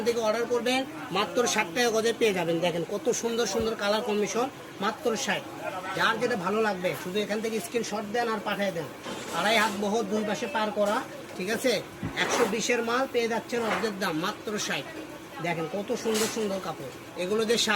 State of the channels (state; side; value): identical; both; correlation 1.00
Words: থেকে অর্ডার করবেন, মাত্র 60 টাকা গজে পেয়ে যাবেন। দেখেন কত সুন্দর সুন্দর কালার কম্বিনেশন, মাত্র 60। যার যেটা ভালো লাগবে শুধু এখান থেকে স্ক্রিনশট দেন আর পাঠিয়ে দেন। 2.5 হাত বহর, দুই পাশে পার করা, ঠিক আছে। 120-এর মাল পেয়ে যাচ্ছেন অর্ধেক দাম, মাত্র 60। দেখেন কত সুন্দর সুন্দর কাপড়, এগুলো দিয়ে